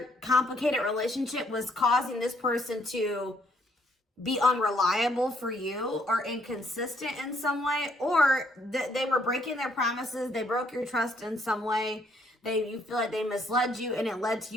complicated relationship was causing this person to be unreliable for you or inconsistent in some way, or they were breaking their promises. They broke your trust in some way. You feel like they misled you, and it led to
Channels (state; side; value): normal; both; correlation 0.69